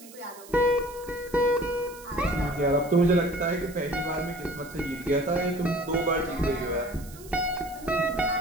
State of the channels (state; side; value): noise; right; hiss, 19 dB below the sound